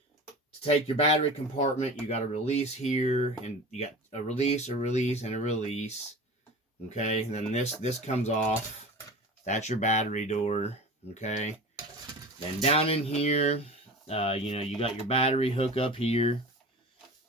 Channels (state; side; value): normal; both; correlation 0.34